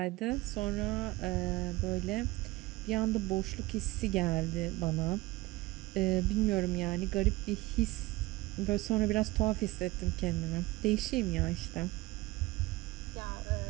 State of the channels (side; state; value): left; quieter; 20.2 dB